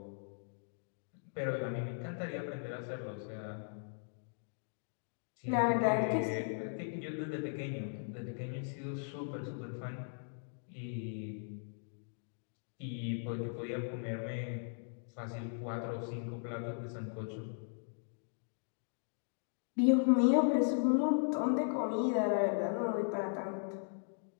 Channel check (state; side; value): silent; right; digital silence